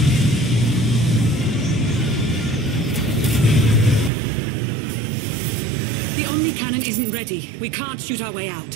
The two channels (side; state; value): left; drops out; at 4.1 s